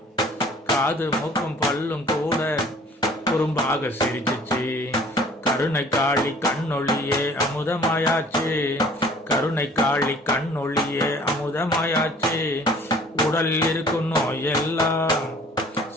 காது மூக்கும் பல்லும் கூட குறும்பாக சிரிச்சிச்சு. கருணை காளி கண்ணொளியே அமுதமாயாச்சு, கருணை காளி கண்ணொளியே அமுதமாயாச்சு. உடல் இருக்கும் நோயெல்லாம்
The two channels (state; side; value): normal; both; correlation 0.52